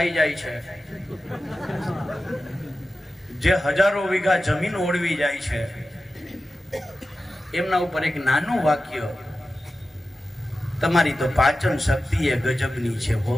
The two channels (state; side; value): normal; both; correlation 0.93